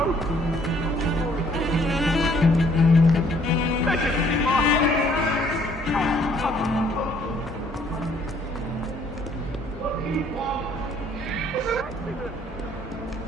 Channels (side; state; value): both; normal; correlation 0.62